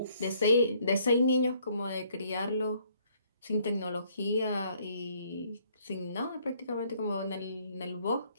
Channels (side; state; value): both; inverted; correlation -0.65